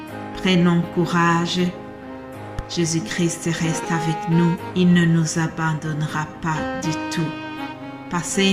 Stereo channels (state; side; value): identical; both; correlation 1.00